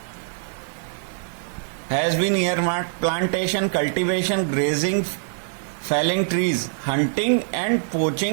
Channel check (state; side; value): silent; left; digital silence